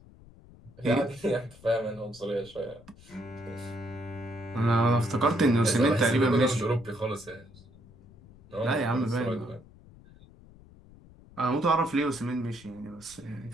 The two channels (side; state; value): left; noise; rumble, 23 dB below the sound